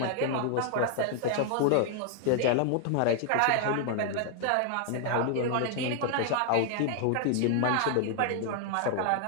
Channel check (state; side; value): different; both; correlation 0.00